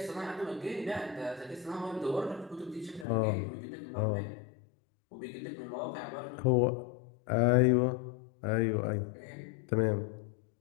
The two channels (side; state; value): right; drops out; at 3.1 s